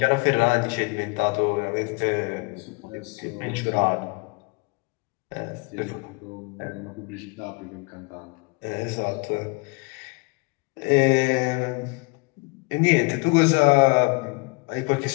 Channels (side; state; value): right; quieter; 29.0 dB